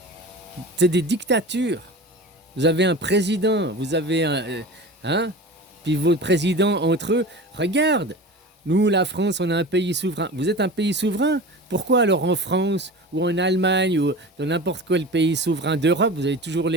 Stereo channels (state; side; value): normal; both; correlation 0.33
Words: C'est des dictatures. Vous avez un président, vous avez un... hein? Puis vos présidents entre eux, regarde, nous, la France, on est un pays souverain. Vous êtes un pays souverain? Pourquoi alors en France ou en Allemagne ou dans n'importe quel pays souverain d'Europe, vous avez toujours